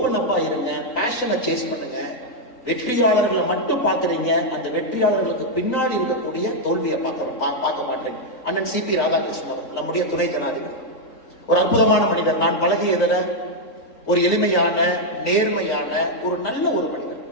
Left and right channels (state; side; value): late; right; 3.9 ms